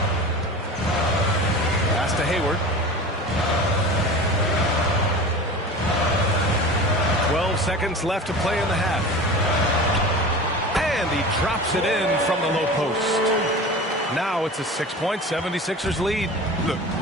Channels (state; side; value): normal; both; correlation 0.34